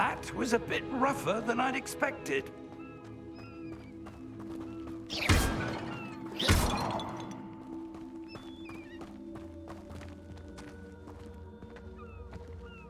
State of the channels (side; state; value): both; identical; correlation 1.00